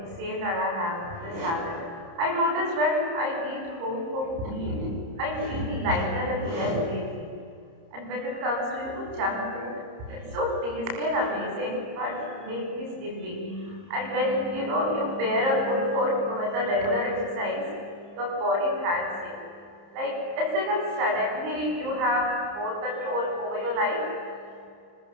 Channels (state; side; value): late; left; 30 ms